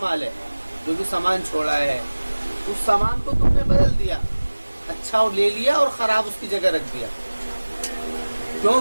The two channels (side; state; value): both; inverted; correlation -1.00